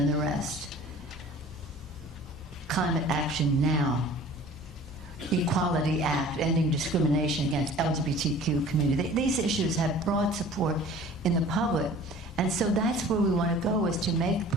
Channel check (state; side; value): normal; both; correlation 0.46